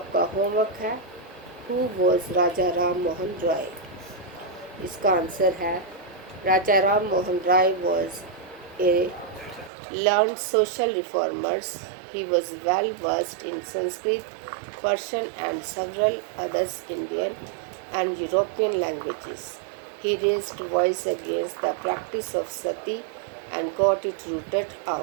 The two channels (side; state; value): left; drops out; at 9.7 s